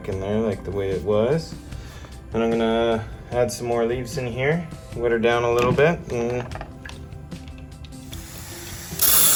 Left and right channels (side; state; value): both; identical; correlation 1.00